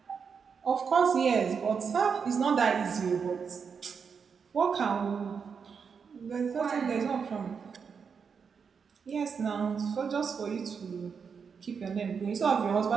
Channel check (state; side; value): quieter; left; 6.1 dB